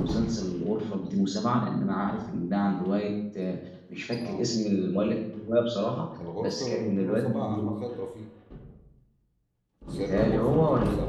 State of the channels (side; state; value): both; identical; correlation 1.00